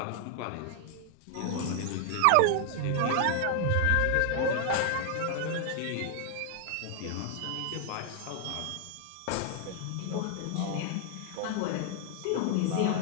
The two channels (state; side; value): different; both; correlation 0.00